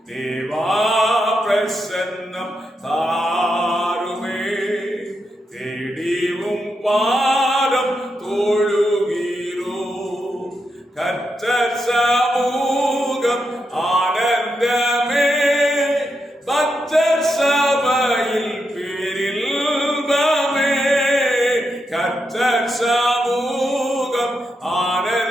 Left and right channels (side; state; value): both; normal; correlation 0.84